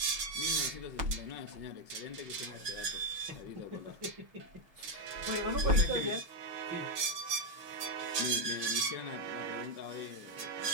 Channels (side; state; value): left; late; 6.4 ms